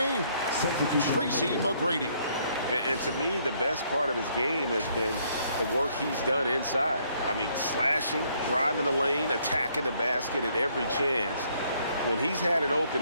Tracy McGrady. And to me, the best part of his game has been the work he's done inside. I mean, slashing, driving the lane, attacking the basket at every chance. When he's had an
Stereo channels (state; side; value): inverted; both; correlation -0.68